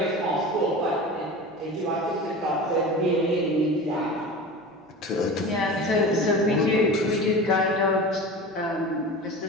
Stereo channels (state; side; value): normal; both; correlation 0.32